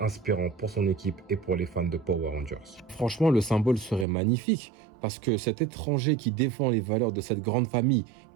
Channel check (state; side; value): drops out; left; at 4.0 s